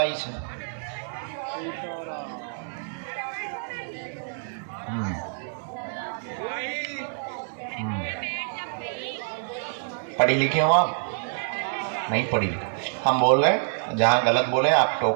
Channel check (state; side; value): silent; left; digital silence